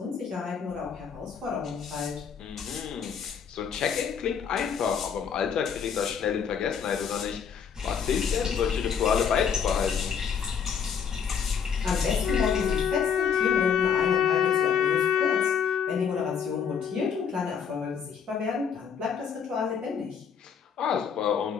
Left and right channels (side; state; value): right; quieter; 7.0 dB